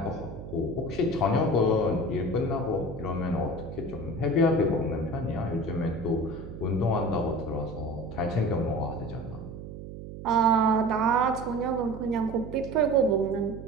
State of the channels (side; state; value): right; noise; hum, 11 dB below the sound